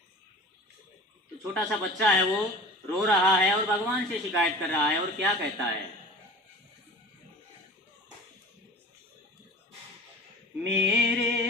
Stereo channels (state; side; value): normal; both; correlation 0.39